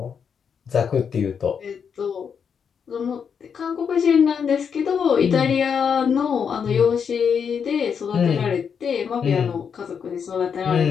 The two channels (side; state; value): right; quieter; 6.9 dB